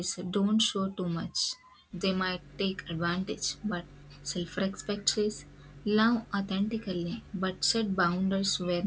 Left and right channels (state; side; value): identical; both; correlation 1.00